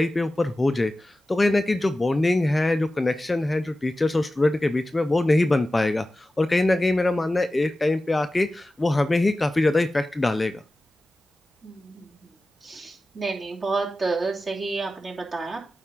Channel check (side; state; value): both; normal; correlation 0.95